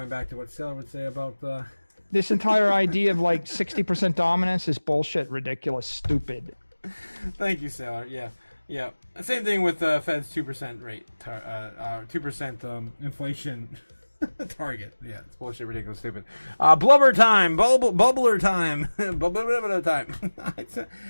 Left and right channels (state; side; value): inverted; both; correlation -1.00